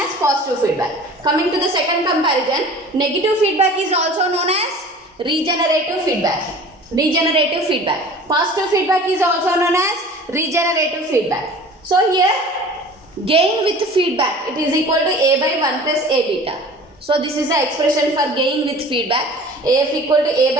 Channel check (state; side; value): normal; both; correlation 0.43